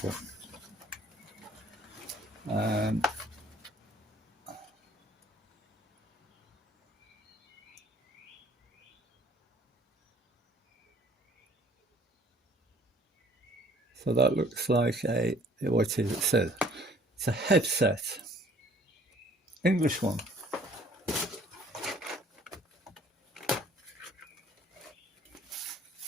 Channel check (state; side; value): normal; both; correlation 0.56